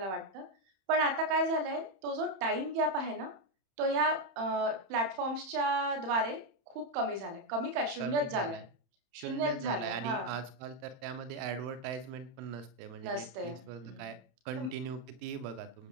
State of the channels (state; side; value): late; left; 31 ms